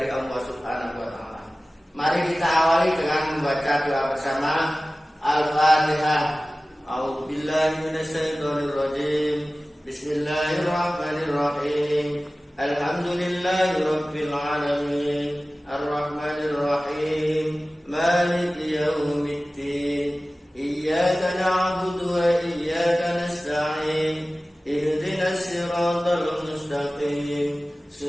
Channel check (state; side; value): normal; both; correlation 0.97